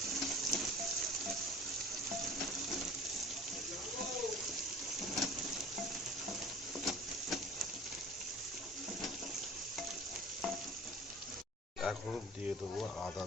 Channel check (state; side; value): normal; both; correlation 0.42